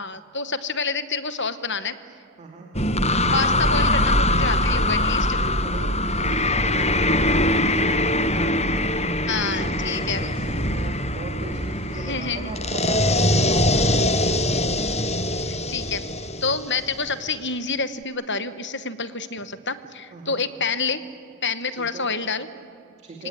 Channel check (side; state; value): both; normal; correlation 0.19